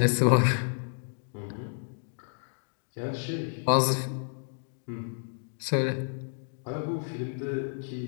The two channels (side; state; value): right; silent; digital silence